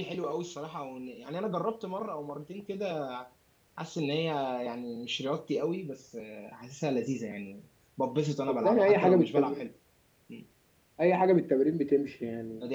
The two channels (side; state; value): both; identical; correlation 1.00